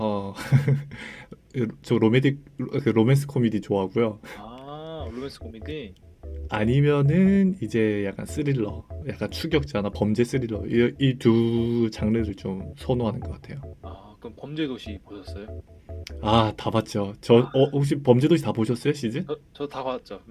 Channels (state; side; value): identical; both; correlation 1.00